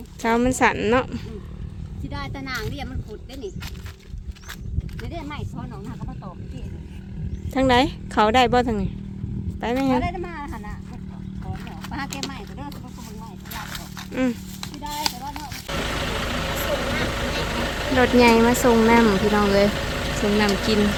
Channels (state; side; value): identical; both; correlation 1.00